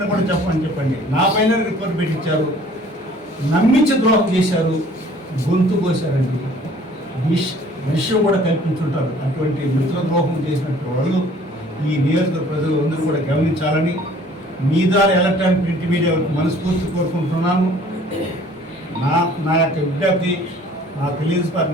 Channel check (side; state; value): both; normal; correlation 0.54